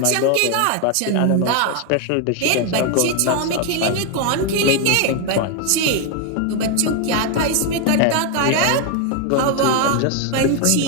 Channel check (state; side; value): different; both; correlation 0.01